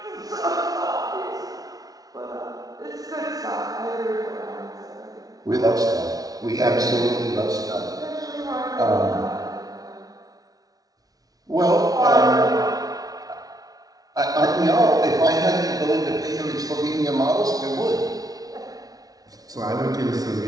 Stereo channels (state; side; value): late; left; 0.18 ms